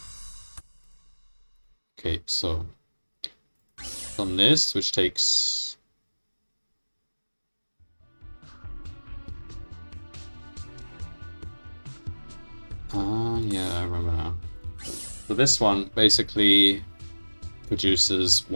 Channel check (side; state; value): both; inverted; correlation -1.00